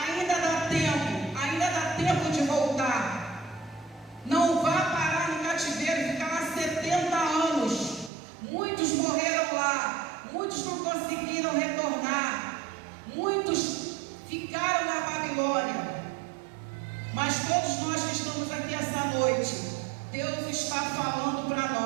dá tempo de voltar. Não vá parar no cativeiro e ficar lá 70 anos. Muitos morreram lá, muitos não conseguiram retornar, muitos ficaram na Babilônia. Mas todos nós que estamos aqui essa noite, Deus está falando para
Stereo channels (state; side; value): drops out; left; at 8.1 s